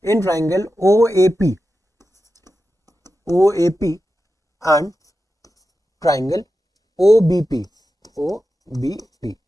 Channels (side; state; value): both; normal; correlation 0.91